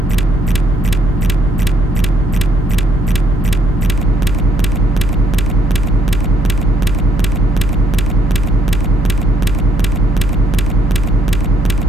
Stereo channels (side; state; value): both; normal; correlation 0.70